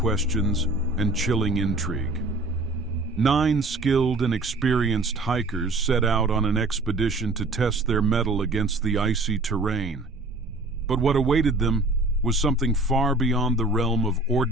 and chilling intrigue. 9 skilled and experienced hikers set out on an expedition to test their mettle against the icy terrain. But what awaited them was something far beyond the realm of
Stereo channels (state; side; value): quieter; left; 3.0 dB